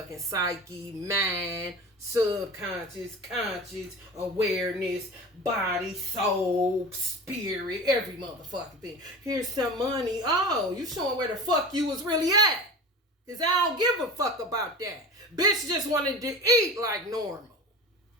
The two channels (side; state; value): both; normal; correlation 0.33